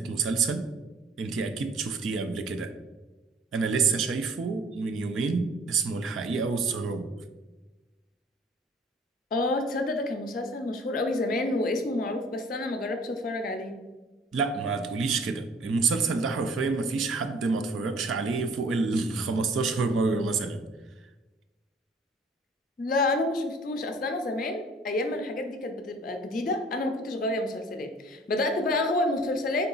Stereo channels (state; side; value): normal; both; correlation 0.52